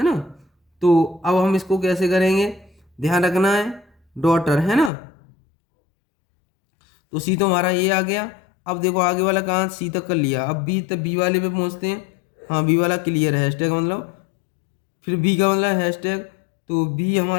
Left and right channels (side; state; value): right; drops out; at 4.9 s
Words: ना। तो अब हम इसको कैसे करेंगे, ध्यान रखना है, डॉटर, है ना। तो सी तो हमारा ये आ गया। अब देखो आगे वाला कहाँ, सी तक कर लिया, अब बी तक, बी वाले पे पहुँचते हैं। हाँ बी वाला क्लियर है, हैशटैग मतलब, फिर बी का मतलब हैशटैग, तो बी